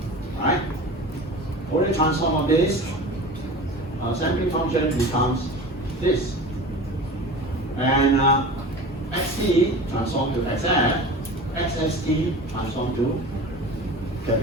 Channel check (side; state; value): both; normal; correlation 0.35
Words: Alright? Fourier transform of this sampling function becomes this. And xt transform to xf, xst transform to